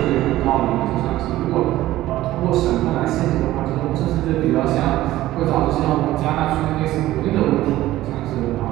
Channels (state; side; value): quieter; left; 15.5 dB